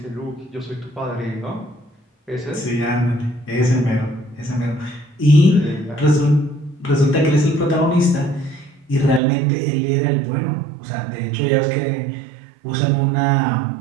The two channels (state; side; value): drops out; left; at 9.2 s